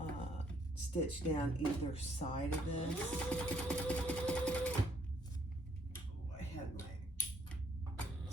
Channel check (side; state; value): both; normal; correlation 0.68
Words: stitch down either side of this. Oh, I had my